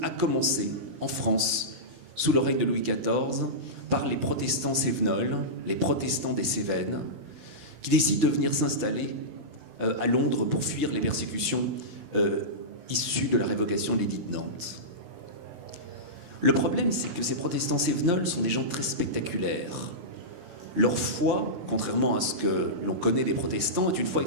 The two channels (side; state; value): left; late; 16 ms